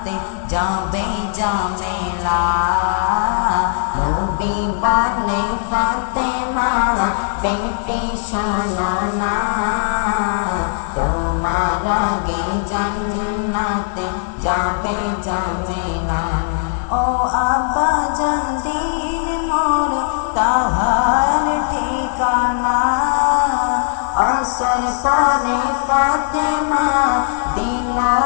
যাবে জামেলা। নবী বলে ফাতেমা বেটি শোনো না, তোমার আগে জান্নাতে যাবে জামেলা। ও আব্বাজান দিন মোর তাহার ঠিকানা, আসর পরে ফাতেমা দিল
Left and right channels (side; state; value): right; silent; 67 dB below the other